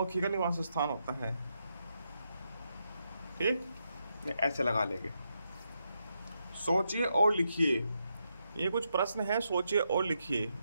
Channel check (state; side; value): inverted; both; correlation -0.82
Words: का निवास स्थान होता है। ठीक, ऐसे लगा लेंगे। सोचिए और लिखिए। ये कुछ प्रश्न है, सोचिए और लिखिए।